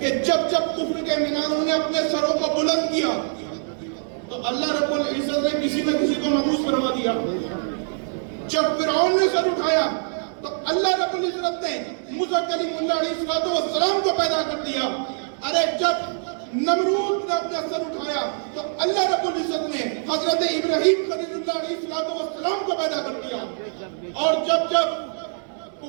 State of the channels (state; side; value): silent; left; 63 dB below the other